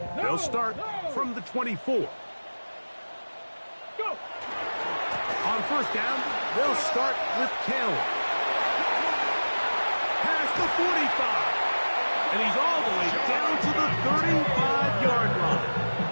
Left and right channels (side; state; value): both; inverted; correlation -1.00